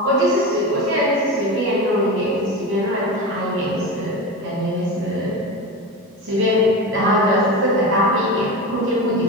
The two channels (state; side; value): normal; both; correlation 0.24